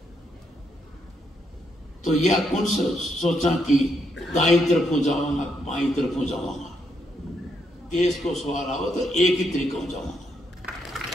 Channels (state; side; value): normal; both; correlation 0.77